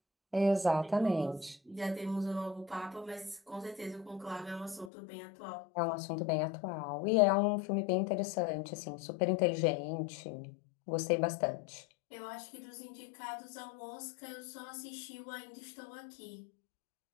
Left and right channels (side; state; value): right; drops out; at 4.9 s